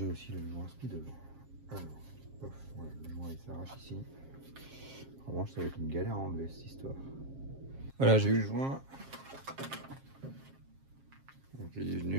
aussi le joint SPI devant. Alors, pof, voilà, le joint il s'arrache ici. Vraiment, ça va être une galère à enlever cette histoire. Voilà, j'ai eu le joint. Donc, il est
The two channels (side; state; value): left; late; 7.4 ms